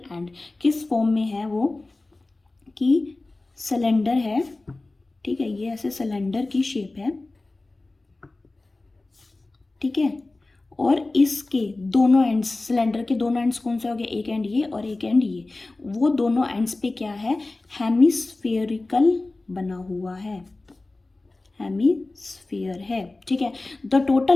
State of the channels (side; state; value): right; quieter; 3.1 dB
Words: एंड, किस फॉर्म में है वो कि सिलेंडर है, ठीक है, ये ऐसे सिलेंडर की शेप है, ठीक है, और इसके दोनों एंड्स, सिलेंडर के दोनों एंड्स कौन से हो गए, एक एंड ये और एक एंड ये, वो दोनों एंड्स पे क्या है, हेमिस्फेरिकल बना हुआ है, हेमिस्फीयर है, ठीक है। The